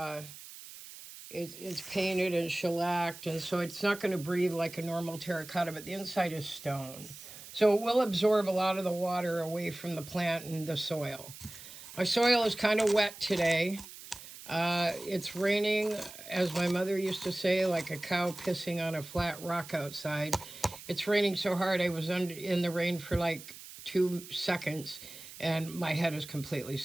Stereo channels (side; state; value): right; noise; hiss, 15 dB below the sound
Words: it's painted and shellacked, and so it's not going to breathe like a normal terracotta, but the inside is stone. So it will absorb a lot of the water away from the plant and the soil. My soil is kind of wet today. It's raining, as my mother used to say, like a cow pissing on a flat rock outside. It's raining so hard I was in the rain for like 2 seconds, and my head is completely